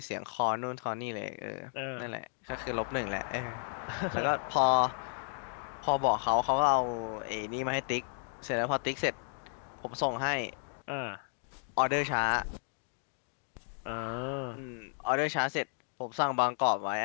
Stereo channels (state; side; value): silent; right; 56 dB below the other